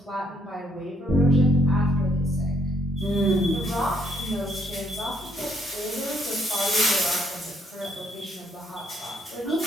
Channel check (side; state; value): both; normal; correlation 0.70